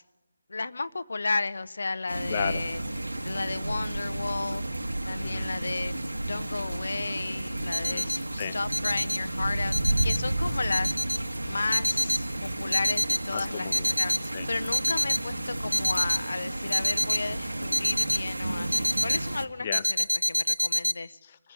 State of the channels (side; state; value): both; inverted; correlation -0.97